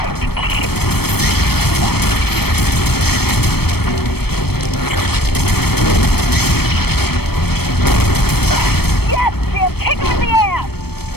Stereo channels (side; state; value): right; late; 0.96 ms